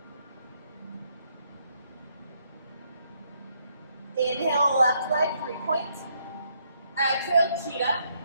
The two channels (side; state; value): both; inverted; correlation -0.73